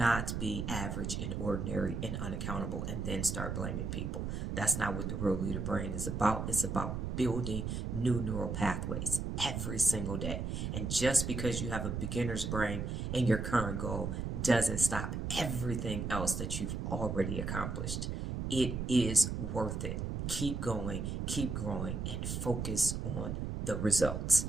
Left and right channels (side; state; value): right; noise; rumble, 3 dB below the sound